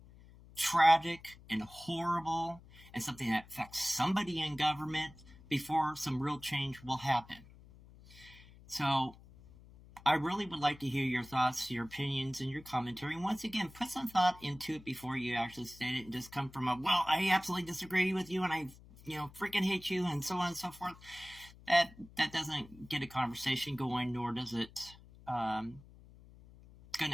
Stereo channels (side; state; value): left; noise; hum, 21 dB below the sound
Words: tragic and horrible and something that affects somebody in government before some real change will happen. So I really would like to hear your thoughts, your opinions, and your commentary. And once again, put some thought into it before you actually state it and just come from a, well, I absolutely disagree with you and I, freaking hate you and so on and so forth. That doesn't get a conversation going, nor does it going